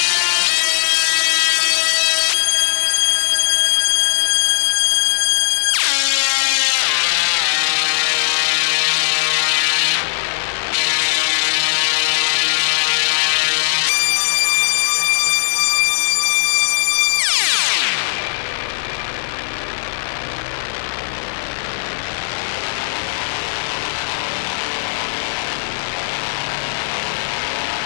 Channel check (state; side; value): silent; right; digital silence